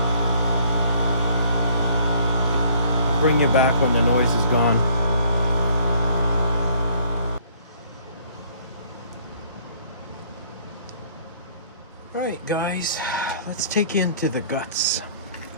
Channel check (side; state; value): both; inverted; correlation -0.59